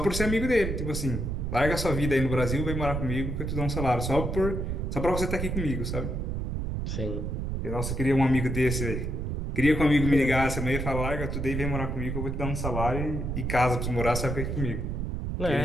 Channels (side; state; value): right; noise; rumble, 2 dB below the sound